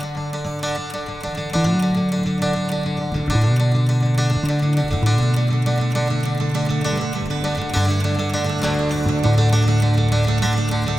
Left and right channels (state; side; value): normal; both; correlation 0.94